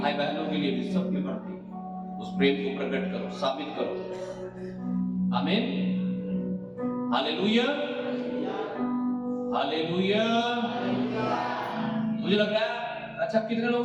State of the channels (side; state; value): both; identical; correlation 1.00